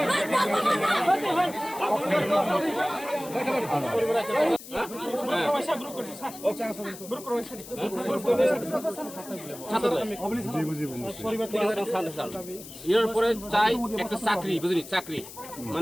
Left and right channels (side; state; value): left; noise; hiss, 15 dB below the sound